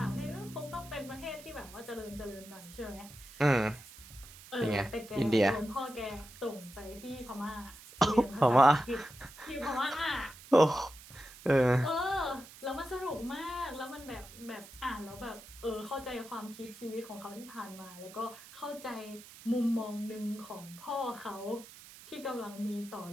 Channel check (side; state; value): right; noise; hiss, 18 dB below the sound